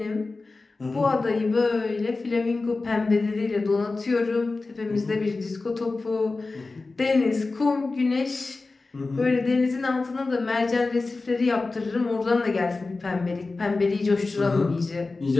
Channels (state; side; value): quieter; right; 3.6 dB